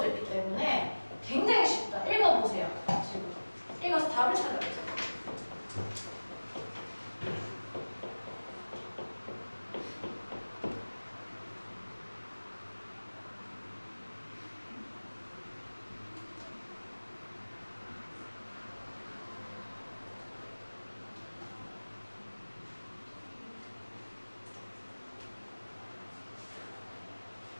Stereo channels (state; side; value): inverted; both; correlation -1.00